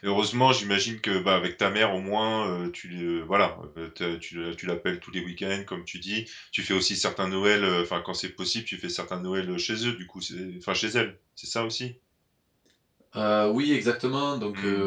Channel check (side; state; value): both; identical; correlation 1.00